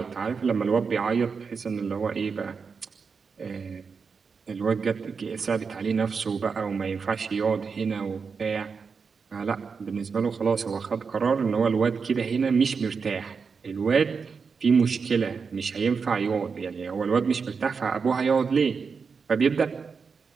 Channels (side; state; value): left; quieter; 5.4 dB